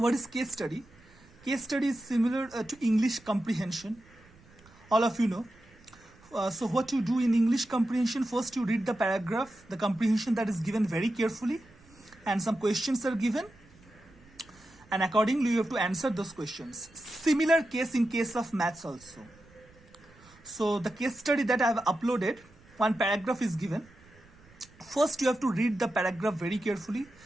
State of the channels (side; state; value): right; noise; rumble, 26 dB below the sound